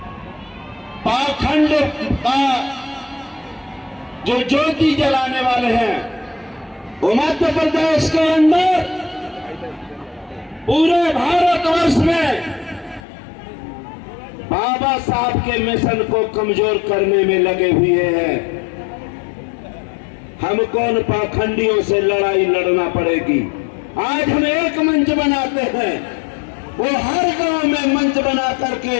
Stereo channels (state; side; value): drops out; right; at 13.1 s